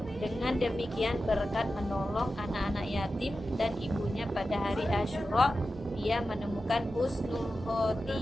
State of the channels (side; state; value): both; normal; correlation 0.92